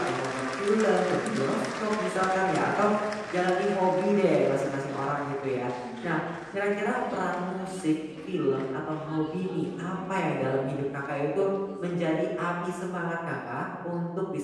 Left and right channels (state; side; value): identical; both; correlation 1.00